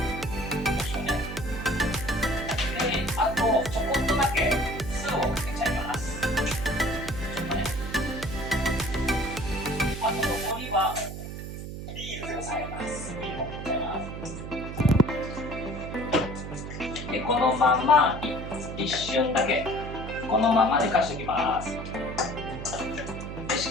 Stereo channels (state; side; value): noise; right; hum, 8 dB below the sound